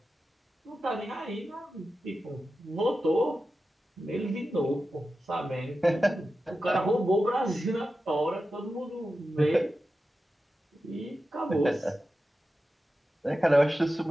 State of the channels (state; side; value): normal; both; correlation 0.92